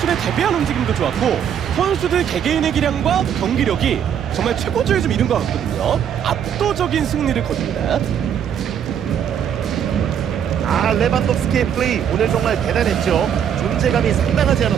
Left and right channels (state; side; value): quieter; left; 8.8 dB